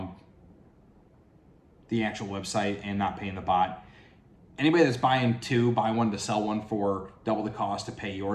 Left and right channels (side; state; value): both; identical; correlation 1.00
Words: the actual website and not paying the bot. Anybody that's buying two, buy one to sell one for double the cost to pay